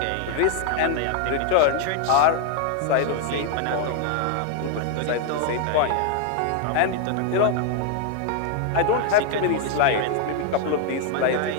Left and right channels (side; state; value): both; different; correlation 0.01